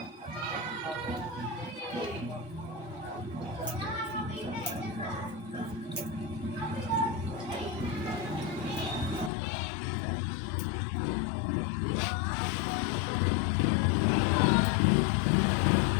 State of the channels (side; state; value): right; drops out; at 9.3 s